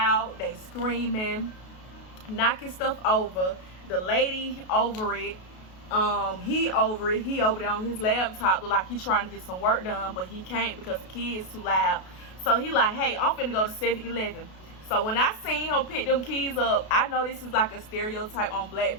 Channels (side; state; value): right; late; 33 ms